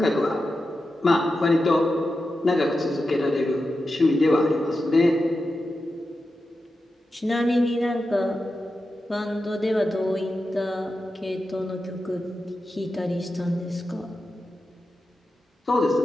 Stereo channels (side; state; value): both; normal; correlation 0.91